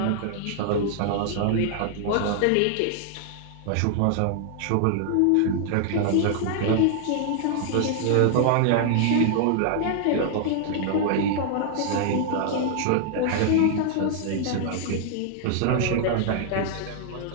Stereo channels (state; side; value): different; both; correlation 0.00